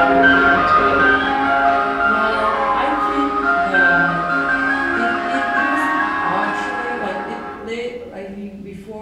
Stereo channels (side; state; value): both; identical; correlation 1.00